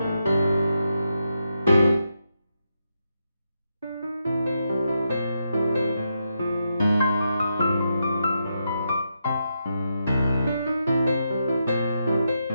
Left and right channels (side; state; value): both; inverted; correlation -0.84